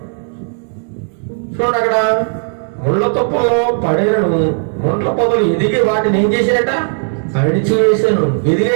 చూడండి, అక్కడ ముళ్ళ తప్పుల్లో పడేను ముళ్ళ పొదలు ఎదిగి వాటిని ఏం చేశారట? అడిచివేశాను.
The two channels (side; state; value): left; silent; 59 dB below the other